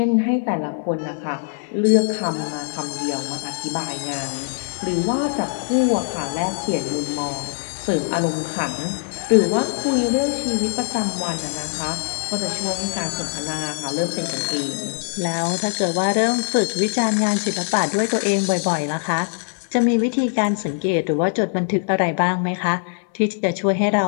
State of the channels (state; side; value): silent; right; digital silence